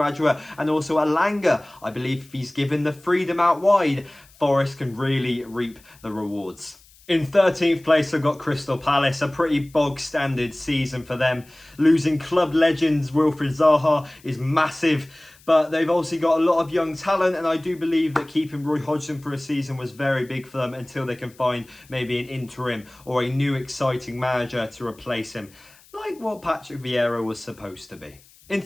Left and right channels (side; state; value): left; noise; hiss, 27 dB below the sound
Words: and also Alanga. I believe if he's given the freedom out wide, Forest can really reap the rewards. In 13th place, I've got Crystal Palace, a pretty bog-standard season for them. Losing club legends Wilfried Zaha is massive, But they've also got a lot of young talent, and I do believe that keeping Roy Hodgson for a season was very big for them until they can find maybe an interim or a new exciting manager to replace him, like what Patrick Vieira was supposed to be. In